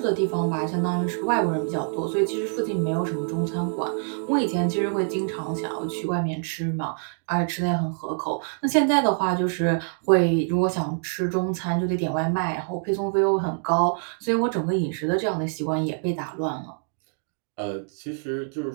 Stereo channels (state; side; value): silent; left; 59 dB below the other